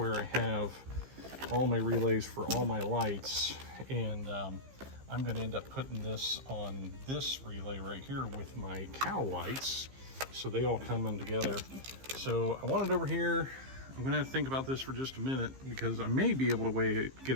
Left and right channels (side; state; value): left; late; 15 ms